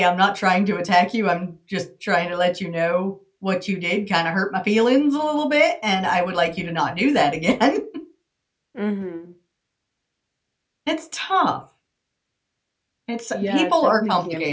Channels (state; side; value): identical; both; correlation 1.00